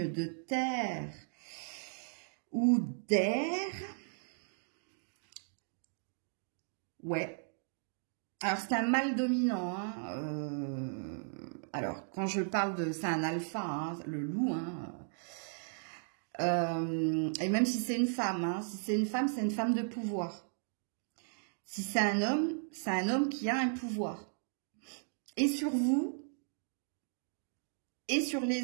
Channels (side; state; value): left; silent; digital silence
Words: de terre ou d'air. Ouais. Alors, c'est un mâle dominant. Hein, alors, quand je parle de... C'est un alpha, hein, le loup. Hein, et même si c'est une femme, hein, si c'est une femme de pouvoir. Si c'est un homme qui a un pouvoir. Et sur vous, et sur